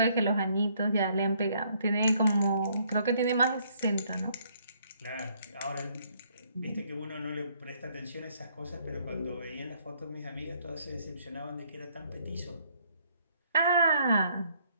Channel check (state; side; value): inverted; both; correlation -0.67